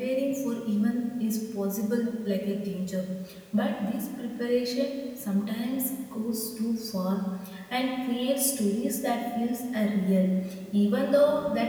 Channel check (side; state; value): both; identical; correlation 1.00